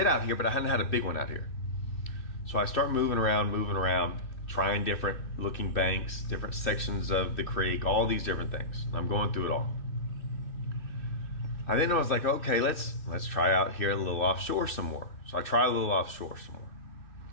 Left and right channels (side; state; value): right; late; 2.6 ms